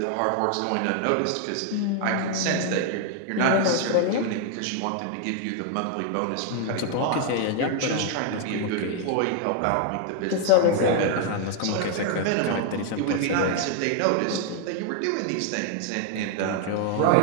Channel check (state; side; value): different; both; correlation 0.00